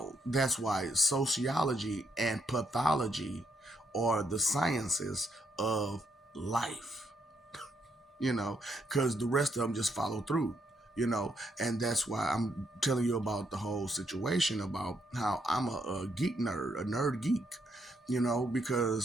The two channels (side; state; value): both; normal; correlation 0.76